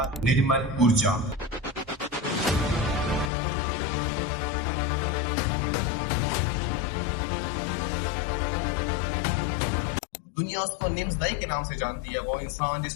निर्मल ऊर्जा। दुनिया उसको निम्स दाई के नाम से जानती है, वो इंसान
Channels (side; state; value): right; drops out; at 3.3 s